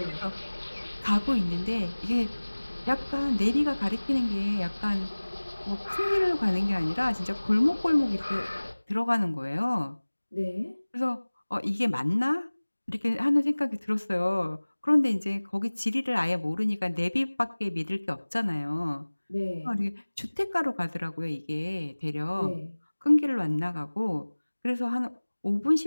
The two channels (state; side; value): inverted; both; correlation -1.00